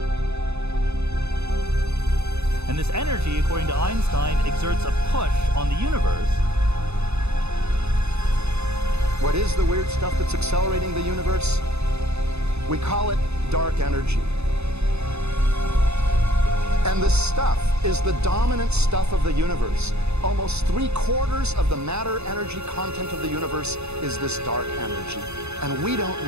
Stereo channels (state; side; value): late; left; 0.80 ms